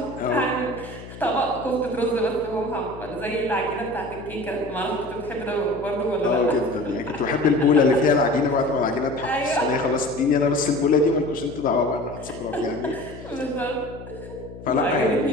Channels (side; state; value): left; noise; hum, 14 dB below the sound